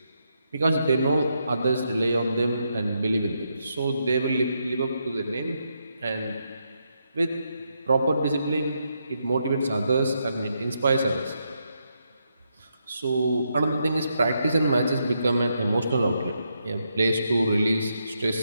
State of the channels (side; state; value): both; inverted; correlation -0.81